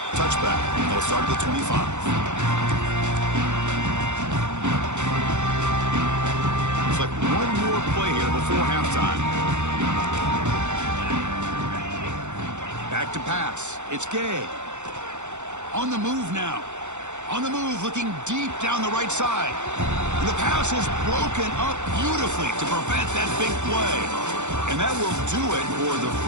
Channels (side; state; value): left; late; 0.84 ms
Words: Touchback. They'll start at the 25. Looks like one more play here before halftime. Back to pass. It's Gay. On the move now. On the move, looking deep down the right side. And the pass is broken up beautifully to prevent that big play. And that will do it for the